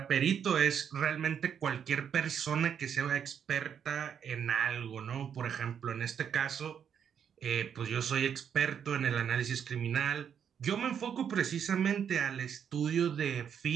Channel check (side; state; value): left; quieter; 8.1 dB